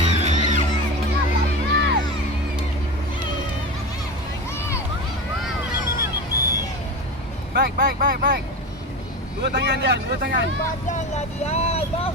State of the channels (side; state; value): both; normal; correlation 0.27